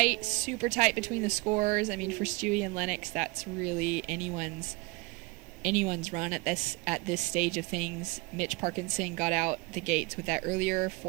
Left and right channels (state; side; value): quieter; left; 25.2 dB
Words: super tight between the scores. I mean, for Stewie and Lennox, that's really anyone's run at this stage of things. Mitch Parkinson got out the gates with that earlier